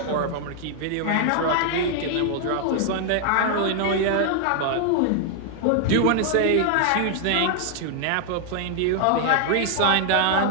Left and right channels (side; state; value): both; different; correlation 0.00